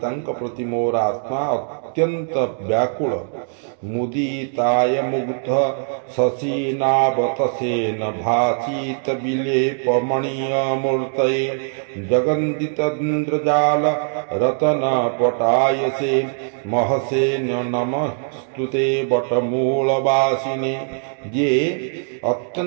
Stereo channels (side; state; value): left; silent; digital silence